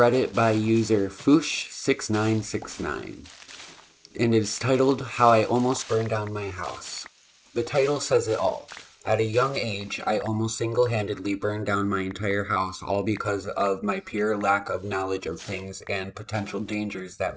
by user Foosh6969, and it is titled How I Almost Burned Down My House. The title says it all. At a young age, I almost single-handedly burned down my entire house, all because of my pure lack of knowledge of things and potential dangers that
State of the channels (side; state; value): both; identical; correlation 1.00